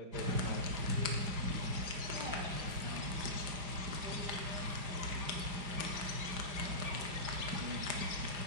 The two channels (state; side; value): late; left; 5.1 ms